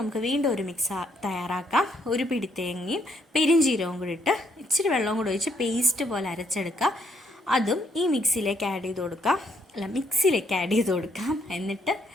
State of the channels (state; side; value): normal; both; correlation 0.71